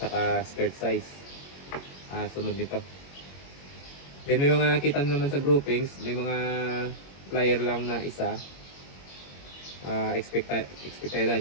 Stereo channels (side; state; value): right; late; 21 ms